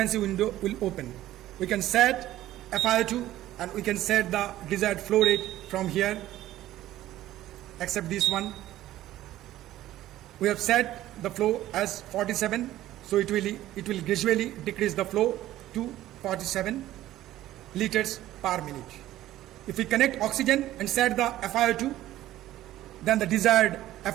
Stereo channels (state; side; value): quieter; left; 14.3 dB